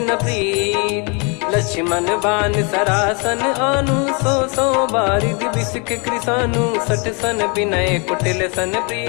प्रीत। लक्ष्मण बान सरासन आनु, 100 बारिधि बिसक कृसानु। 60 सन विनय कुटिल सन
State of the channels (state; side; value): quieter; right; 33.5 dB